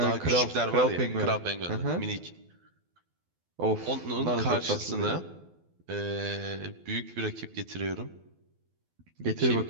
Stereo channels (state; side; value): late; left; 12 ms